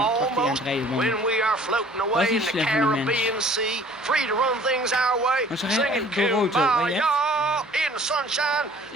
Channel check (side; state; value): both; normal; correlation 0.52